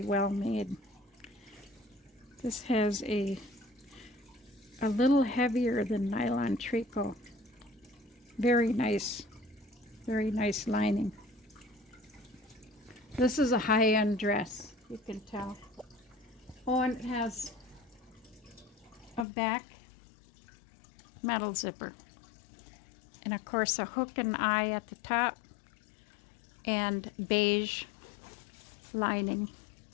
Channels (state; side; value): drops out; right; at 19.2 s